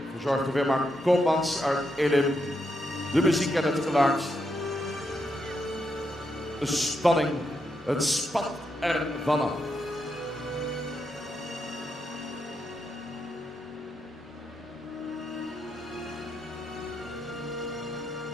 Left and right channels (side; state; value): both; normal; correlation 0.82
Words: verzorgd door Wilma Koopmans uit Elim. De muziek en het geluid. De spanning, het spat ervan af.